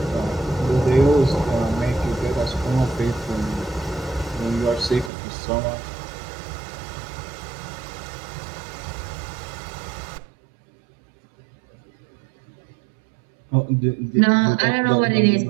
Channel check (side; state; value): left; drops out; at 5.1 s